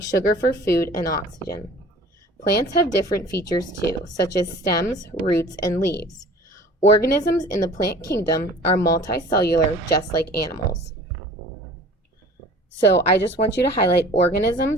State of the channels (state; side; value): normal; both; correlation 0.46